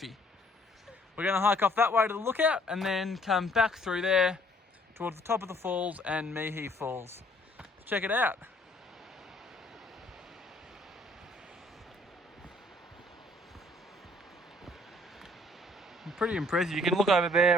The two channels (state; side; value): normal; both; correlation 0.61